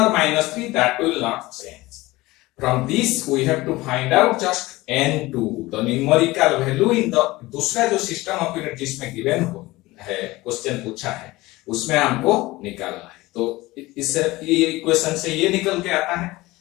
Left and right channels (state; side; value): quieter; right; 19.8 dB